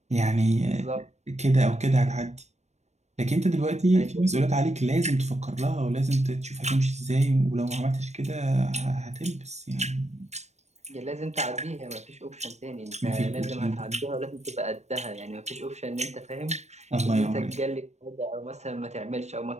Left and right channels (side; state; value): left; late; 0.32 ms